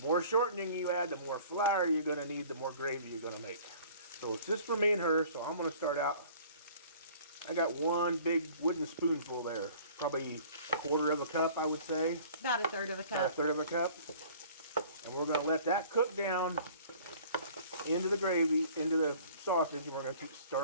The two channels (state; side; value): inverted; both; correlation -0.50